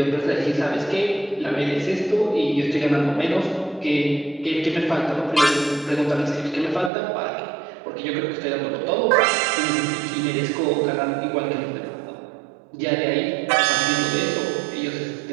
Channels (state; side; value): drops out; left; at 6.9 s